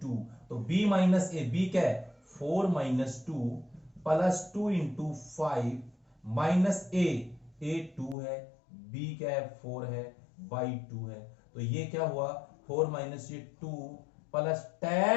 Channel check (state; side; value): drops out; right; at 8.2 s